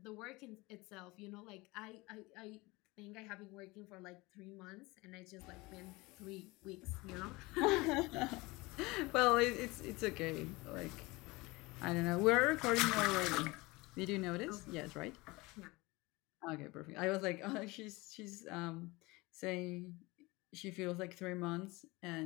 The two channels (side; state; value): right; quieter; 22.9 dB